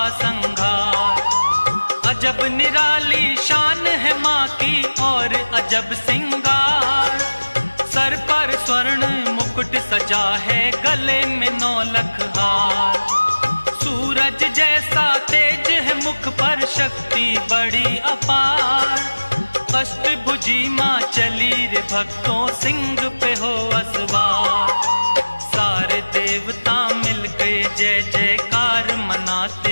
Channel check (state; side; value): inverted; both; correlation -1.00